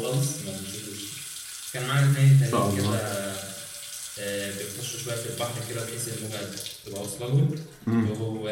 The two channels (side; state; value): both; identical; correlation 1.00